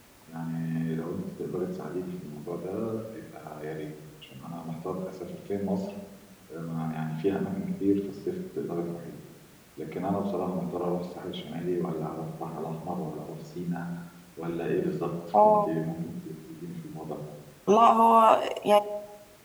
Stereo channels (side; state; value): both; identical; correlation 1.00